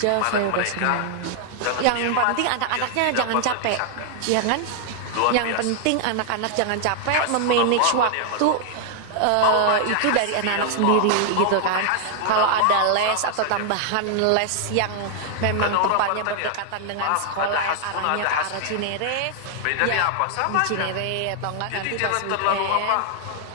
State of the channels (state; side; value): different; both; correlation 0.00